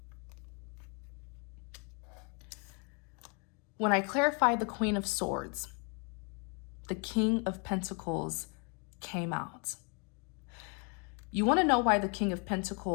When I clarified the Queen of Swords, the King of Pentacles came out. You want to know why the King of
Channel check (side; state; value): right; quieter; 36.3 dB